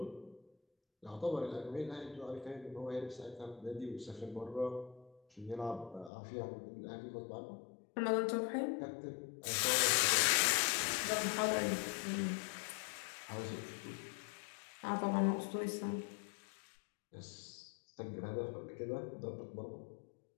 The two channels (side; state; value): right; drops out; at 6.1 s